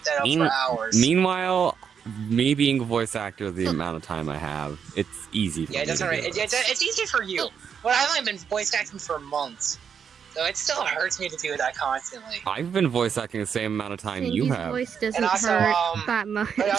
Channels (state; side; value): quieter; left; 7.2 dB